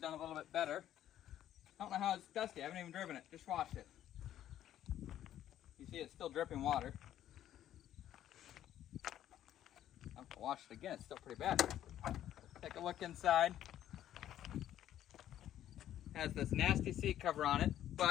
done a little bit better. I don't know how it's dusty. I haven't even driven it. Just washed it. You see it's still dripping water. I have to wash it again. It's still pretty bad. Take a look inside. Has this nasty seat cover on it,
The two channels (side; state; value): right; quieter; 11.7 dB